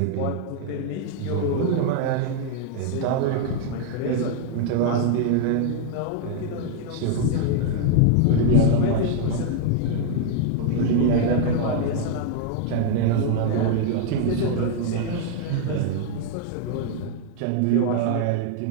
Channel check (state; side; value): different; both; correlation 0.00